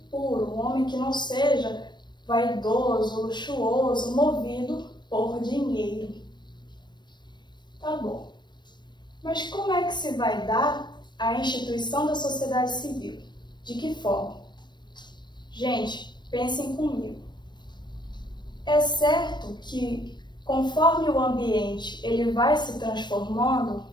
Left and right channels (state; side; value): late; right; 0.22 ms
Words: puro, um homem que não seja vaidoso, luxuoso, movido por dinheiro. Tá bom. Mas como é que se vai dar a instituição da sociedade civil? De que forma? Gente, pensem comigo. É certo que conforme o ambiente ele vai se transformando,